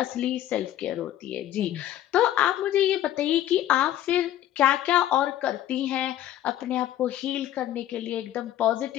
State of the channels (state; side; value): quieter; right; 12.6 dB